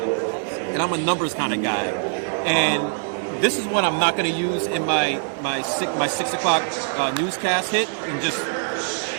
and I'm a numbers kind of guy. And this is one I'm not going to use in my 6 o'clock newscast hit in just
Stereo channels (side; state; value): left; silent; digital silence